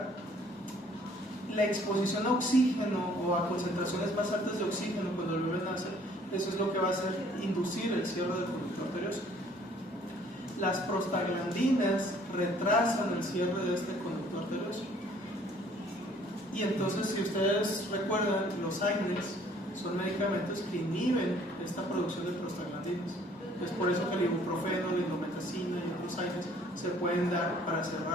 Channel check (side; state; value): both; normal; correlation 0.58